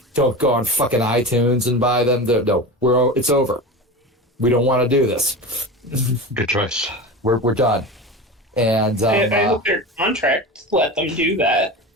don't go on fucking iTunes and buy them. No, it's over. We don't want to do this. Good choice. We're done. And I hope their contract let them do that.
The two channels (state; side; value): normal; both; correlation 0.28